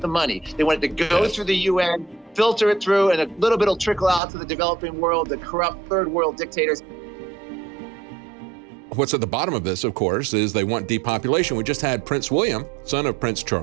money. They want it to go through the UN, filter it through, and a little bit will trickle out to the developing world, the corrupt third world dictators. What's at the bottom of this, of course, is they want depopulation. We just had Prince William, son of Prince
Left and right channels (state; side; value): drops out; left; at 4.2 s